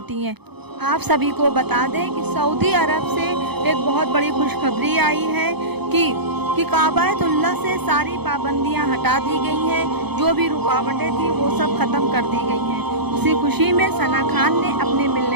हैं। आप सभी को बता दें कि सऊदी अरब से एक बहुत बड़ी खुशखबरी आई है कि काबातुल्लाह से सारी पाबंदियां हटा दी गई हैं। जो भी रुकावटें थी वो सब ख़त्म कर दी गई हैं। उसी खुशी में सना खान ने अपने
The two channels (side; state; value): left; late; 0.98 ms